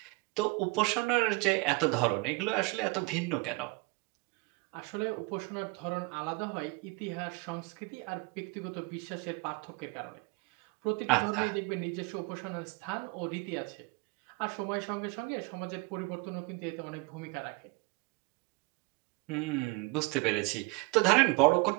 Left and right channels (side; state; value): left; quieter; 25.6 dB